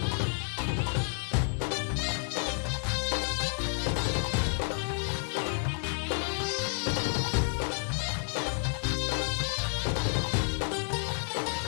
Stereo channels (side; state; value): right; silent; 58 dB below the other